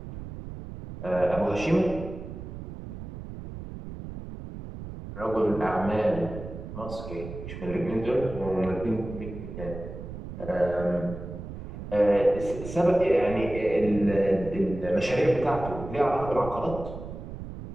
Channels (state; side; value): noise; right; rumble, 10 dB below the sound